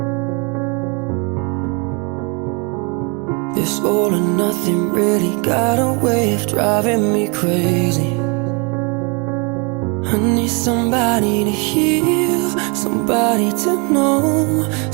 This all or nothing really got a way of driving me crazy. I need somebody to heal, somebody to know,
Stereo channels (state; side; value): quieter; left; 32.3 dB